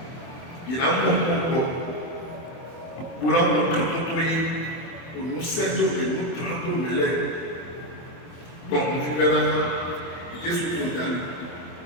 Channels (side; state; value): right; late; 24 ms